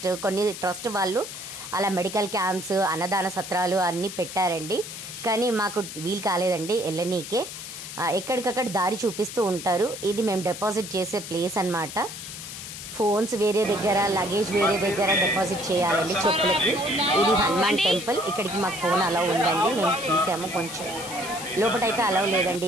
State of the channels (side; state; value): left; noise; hiss, 10 dB below the sound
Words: కొన్ని ట్రస్ట్ వాళ్ళు అలా మెడికల్ క్యాంప్స్, అన్నదాన సత్రాలు అన్నీ పెట్టారండి. కానీ మాకు వీలు కాలేదండి వెళ్ళనీకే. ఎక్కడికక్కడ దారి చూపిస్తూ ఉంటారు. ఇది మేము డిపాజిట్ చేసే ప్లేస్ అన్నమాట. ఫోన్స్ వేరే దగ్గర, లగేజ్ వేరే దగ్గర డిపాజిట్ చేయాలండి చెప్పులకి. ఇది హనుమాన్ టెంపుల్. ఇక్కడికి మాకు ఫోన్ అలౌ ఉందండి, మేము తీసాము. కొంచెం లోపలైతే అలౌ లేదండి,